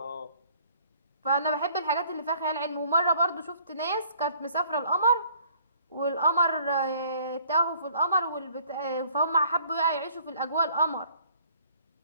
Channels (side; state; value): both; inverted; correlation -0.59